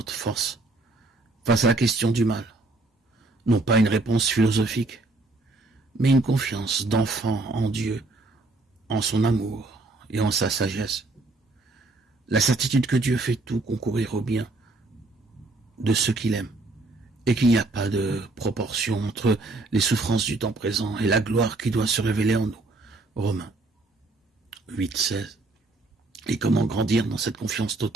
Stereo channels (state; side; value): quieter; left; 3.1 dB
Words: force face à la question du mal. Non pas une réponse philosophique, mais une confiance d'enfant en Dieu, en son amour et en sa sagesse. La certitude que Dieu fait tout concourir au bien de ceux qu'il aime, et qu'il n'y a pas de proportion entre les souffrances du temps présent et la gloire qui doit se révéler en nous. Romains 8:16. Et comment grandir dans cette confiance